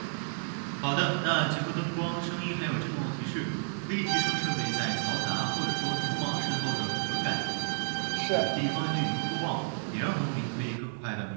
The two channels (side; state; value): left; silent; 57 dB below the other